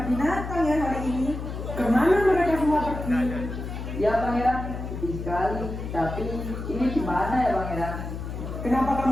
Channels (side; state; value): left; noise; hum, 7 dB below the sound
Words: binatang ya hari ini. Kemana mereka semua pergi? Ya pangeran, sedih sekali. Tapi ini gimana ya pangeran? Kenapa